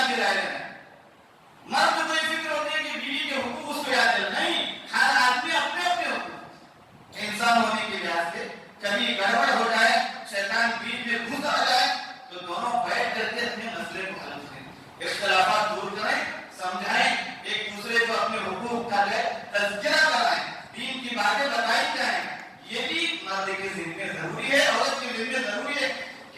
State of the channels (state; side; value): identical; both; correlation 1.00